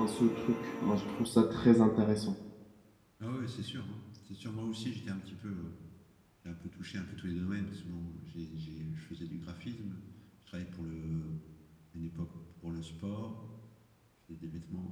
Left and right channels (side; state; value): both; identical; correlation 1.00